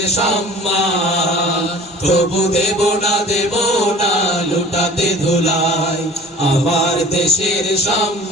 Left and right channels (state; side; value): normal; both; correlation 0.45